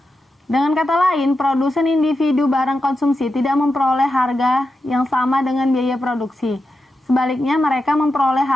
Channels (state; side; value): normal; both; correlation 0.88